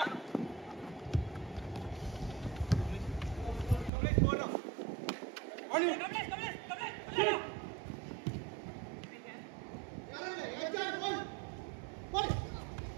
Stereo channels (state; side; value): drops out; left; at 3.9 s